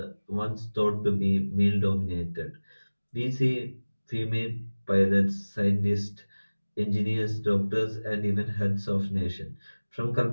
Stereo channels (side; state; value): both; inverted; correlation -1.00